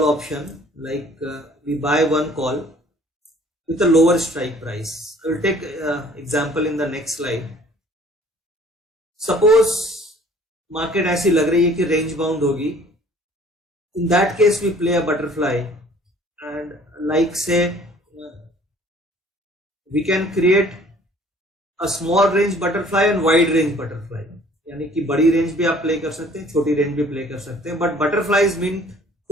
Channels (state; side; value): normal; both; correlation 0.54